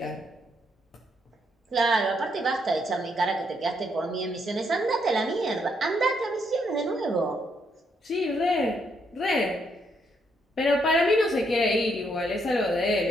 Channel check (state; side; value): normal; both; correlation 0.75